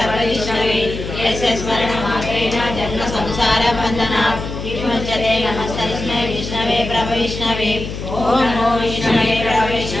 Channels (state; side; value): noise; left; hum, 7 dB below the sound